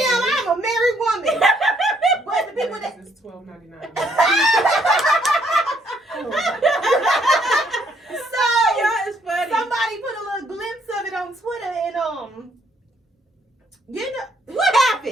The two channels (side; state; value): both; normal; correlation 0.68